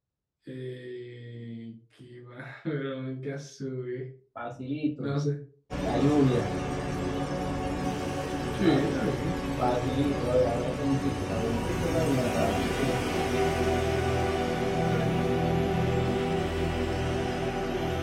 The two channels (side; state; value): both; identical; correlation 1.00